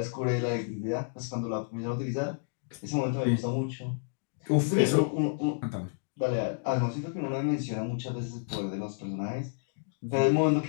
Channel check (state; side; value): silent; right; digital silence